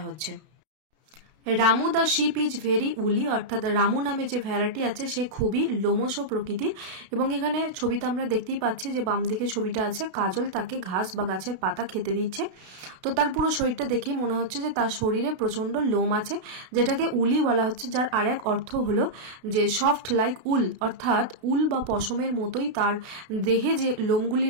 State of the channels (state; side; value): late; left; 32 ms